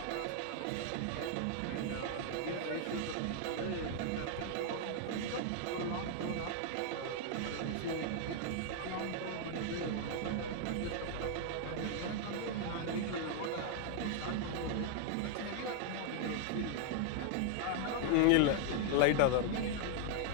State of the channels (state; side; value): different; both; correlation 0.00